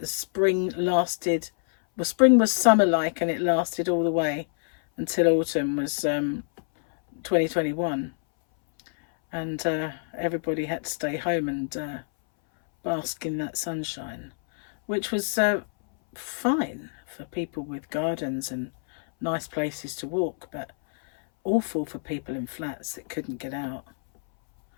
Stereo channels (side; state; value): right; silent; 61 dB below the other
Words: spring lasted, well, spring was summer-like and it lasted all the way until autumn was 2021. And everybody had to stay home and bask in that sunshine, which was fine for people with gardens and nice places to walk, but awful for people in flats that couldn't get out